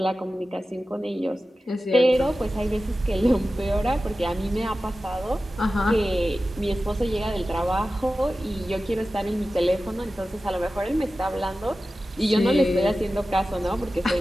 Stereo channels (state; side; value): normal; both; correlation 0.95